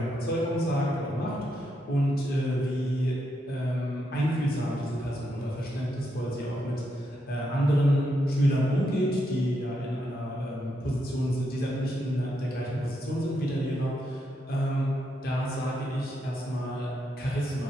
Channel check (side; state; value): both; normal; correlation 0.81